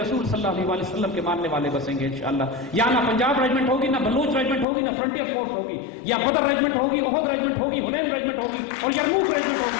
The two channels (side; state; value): right; drops out; at 4.7 s